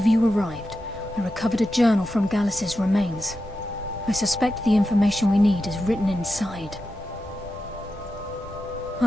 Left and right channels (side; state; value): right; noise; rumble, 19 dB below the sound